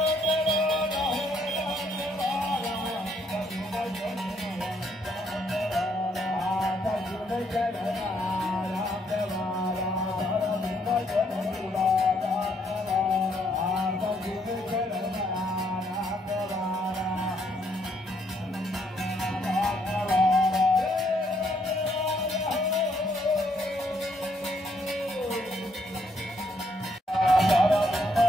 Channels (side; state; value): both; normal; correlation 0.72